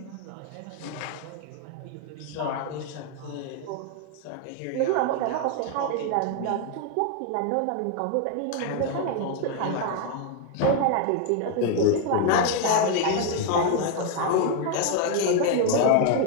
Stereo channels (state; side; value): different; both; correlation 0.01